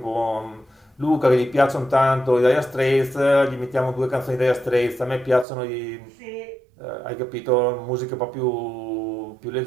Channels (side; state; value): left; drops out; at 5.5 s